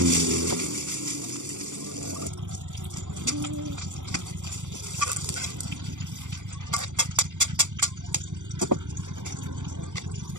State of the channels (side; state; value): left; late; 0.86 ms